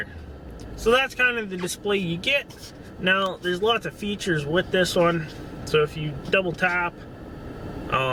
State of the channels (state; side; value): identical; both; correlation 1.00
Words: So that's kind of the display you get. Now there's lots of features with this one. So if you double tap,